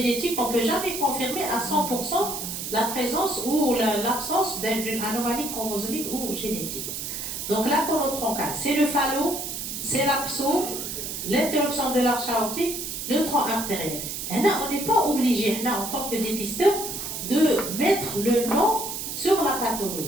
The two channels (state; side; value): noise; right; hiss, 5 dB below the sound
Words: on ne peut jamais confirmer à 100% la présence ou l'absence d'une anomalie chromosomique ou génétique. Donc la conotroncale, c'est le phallo, c'est l'abso, l'interruption de l'arche aortique, le tronc artériel. Et là, on n'est pas obligé, là, en tant que dépisteur, de mettre le nom sur la